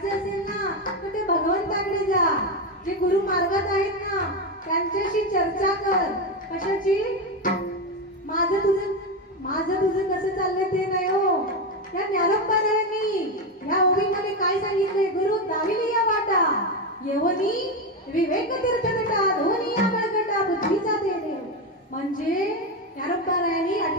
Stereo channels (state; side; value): normal; both; correlation 0.12